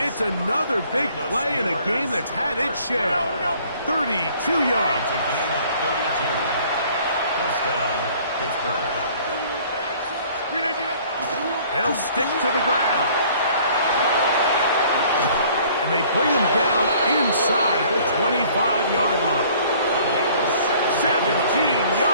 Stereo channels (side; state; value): both; inverted; correlation -0.55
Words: another big play in a game that's had its share. 32 yards. It's a gain of 32. Touchdown, Pittsburgh. They'll stick to the ground. And they bring him down inside the 25-yard line. 17